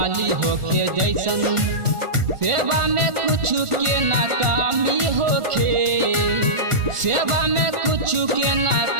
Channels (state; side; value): late; left; 1.4 ms